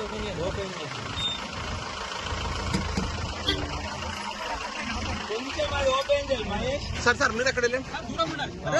సార్ మీరు ఎక్కడ వెళ్ళండి.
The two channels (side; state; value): both; identical; correlation 1.00